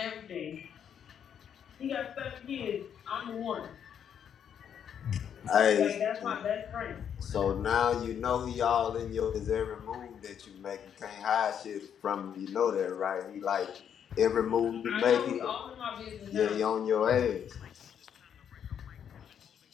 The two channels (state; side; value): quieter; right; 8.5 dB